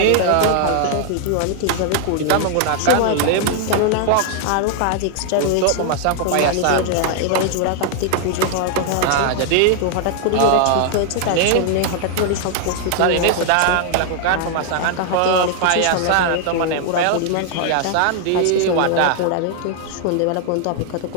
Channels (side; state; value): both; different; correlation 0.00